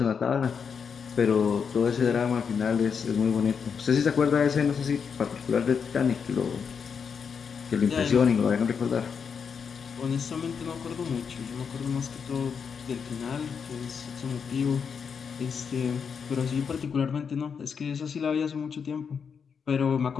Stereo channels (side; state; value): right; quieter; 6.4 dB